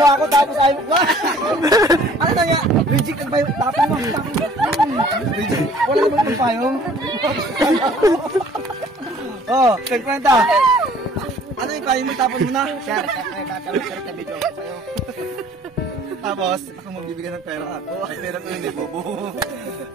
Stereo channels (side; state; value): both; normal; correlation 0.54